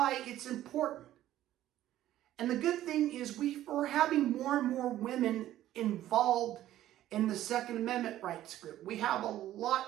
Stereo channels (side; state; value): left; quieter; 13.3 dB